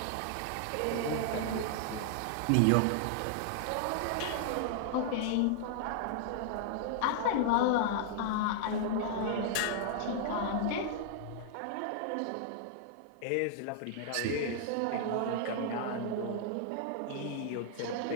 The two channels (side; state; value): both; different; correlation -0.01